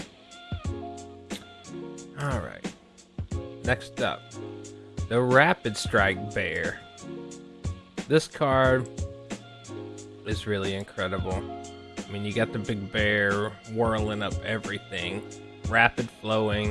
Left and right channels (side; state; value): both; identical; correlation 1.00